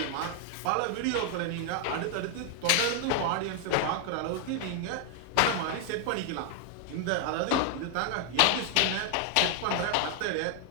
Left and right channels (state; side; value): different; both; correlation 0.00